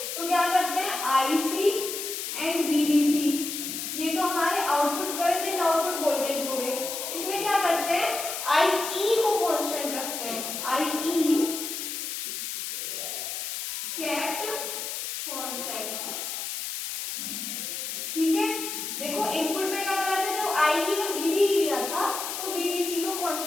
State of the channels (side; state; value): left; noise; hiss, 5 dB below the sound